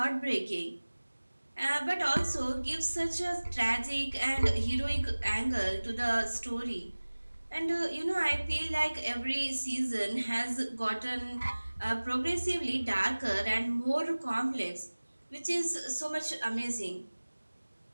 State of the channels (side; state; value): both; inverted; correlation -1.00